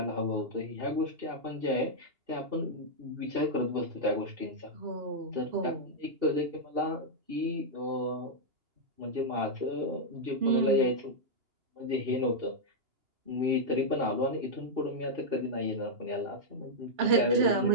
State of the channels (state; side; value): late; left; 2.9 ms